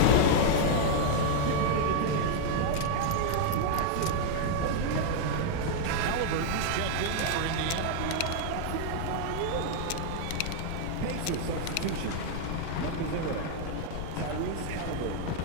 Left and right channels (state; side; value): different; both; correlation -0.01